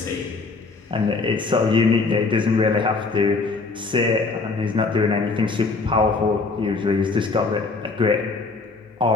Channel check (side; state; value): right; quieter; 4.0 dB